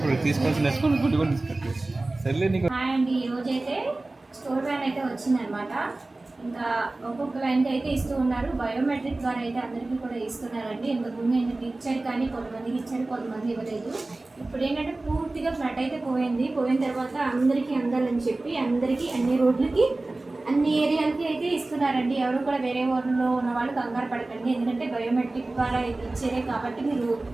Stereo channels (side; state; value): left; quieter; 3.0 dB